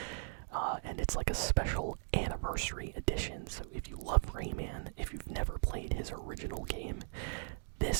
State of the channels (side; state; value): left; silent; digital silence